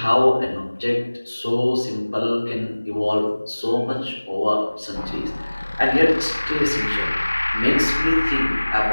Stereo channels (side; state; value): both; inverted; correlation -1.00